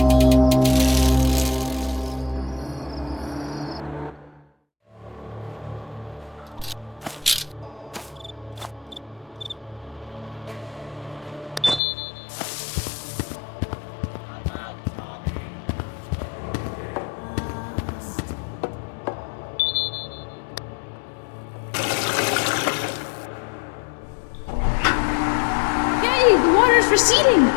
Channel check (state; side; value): drops out; right; at 11.8 s